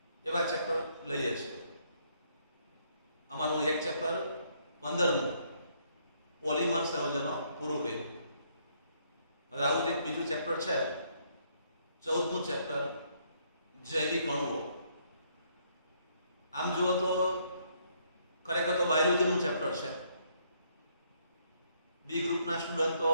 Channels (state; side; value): inverted; both; correlation -0.70